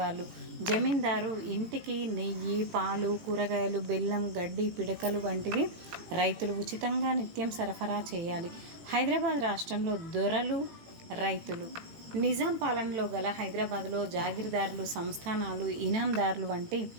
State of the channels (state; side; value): late; left; 18 ms